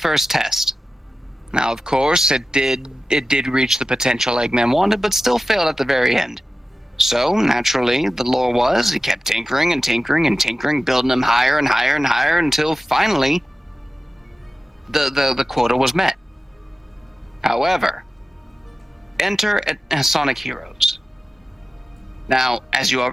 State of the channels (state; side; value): normal; both; correlation 0.94